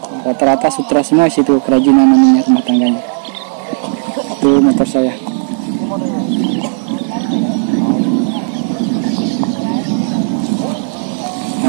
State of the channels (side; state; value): left; silent; digital silence